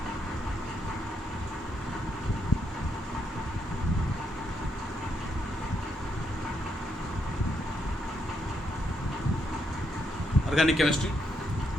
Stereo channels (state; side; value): normal; both; correlation 0.78